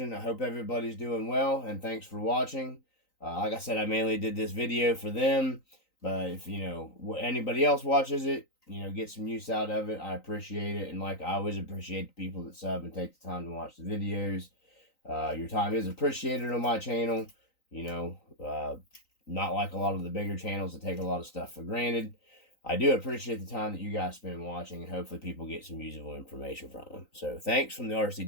I hope everybody's doing well, and thanks for watching. Like I said, I mainly did this video for them, but if, you know, anybody else watches it, you know, get some use out of it, I appreciate it. And like I always appreciate the people that sub and take the time to watch the videos. Your time is appreciated on my channel. You know, not like a lot of the bigger channels that take a lot of stuff for granted. I do appreciate the time that you guys spend watching, and hopefully people get some usable information from them. So thanks from the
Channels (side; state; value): right; late; 3.9 ms